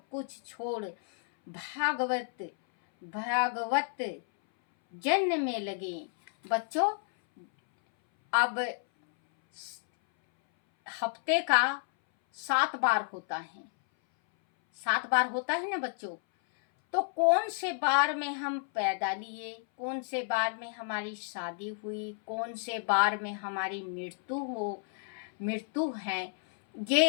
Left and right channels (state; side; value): silent; right; 57 dB below the other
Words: कुछ छोड़ भागवत जन्म में लगे। बच्चों, अब हफ्ते का 7 बार होता है, 7 बार होता है ना बच्चों। तो कौन से बार में हम पैदा लिए, कौन से बार में हमारी शादी हुई, कौन से बार में हमारी मृत्यु है,